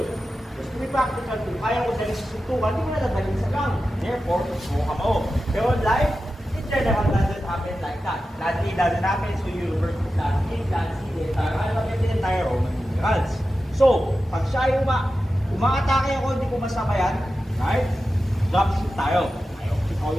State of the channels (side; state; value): both; normal; correlation 0.92